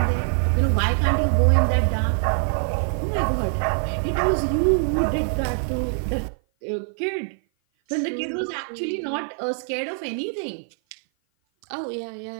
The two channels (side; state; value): left; silent; 56 dB below the other